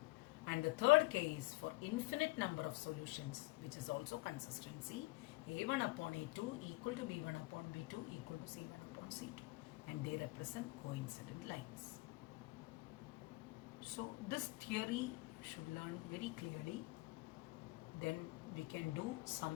And the third case, for infinite number of solutions, which is also consistency, A1 upon A2 equal to B1 upon B2 equal to C1 upon C2. And they represent coincident lines. So this theory should learn very clearly. Then we can do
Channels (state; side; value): quieter; right; 23.7 dB